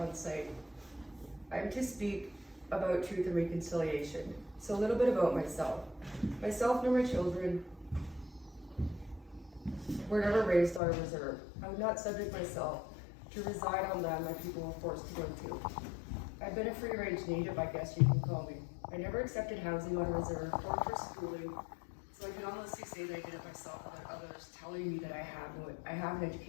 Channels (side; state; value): right; drops out; at 10.8 s